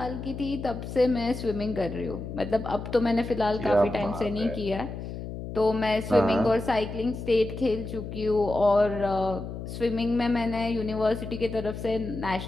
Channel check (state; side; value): noise; left; hum, 8 dB below the sound